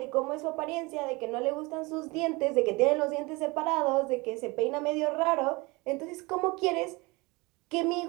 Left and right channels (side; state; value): left; quieter; 25.0 dB